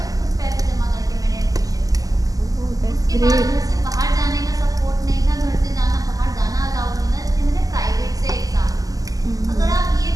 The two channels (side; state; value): left; late; 0.17 ms